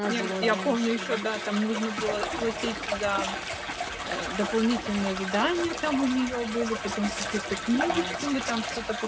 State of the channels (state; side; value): identical; both; correlation 1.00